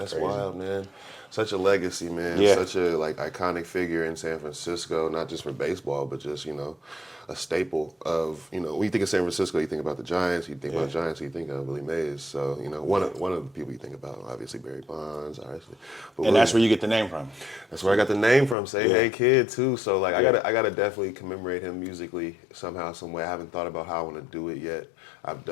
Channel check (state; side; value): drops out; right; at 18.6 s